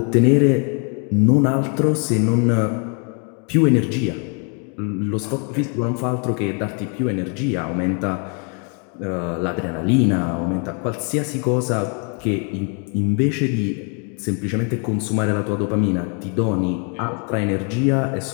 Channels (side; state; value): right; quieter; 39.2 dB